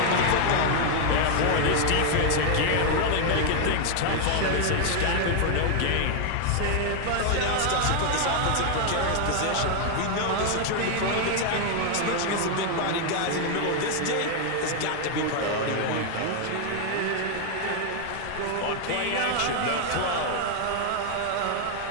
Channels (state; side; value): different; both; correlation 0.00